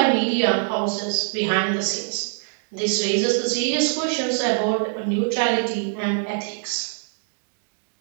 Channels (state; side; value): silent; left; digital silence